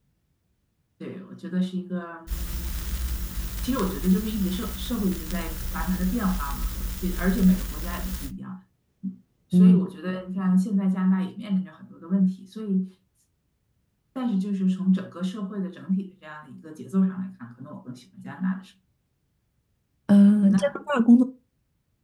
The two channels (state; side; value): identical; both; correlation 1.00